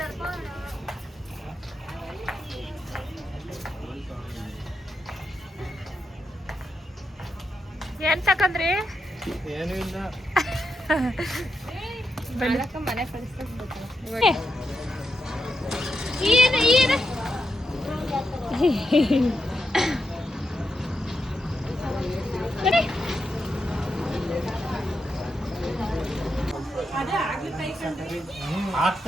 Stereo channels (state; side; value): normal; both; correlation 0.84